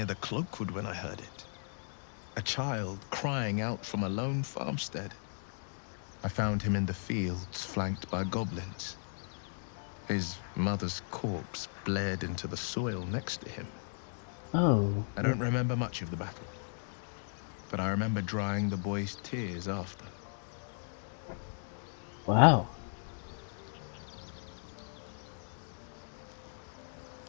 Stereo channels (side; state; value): right; silent; digital silence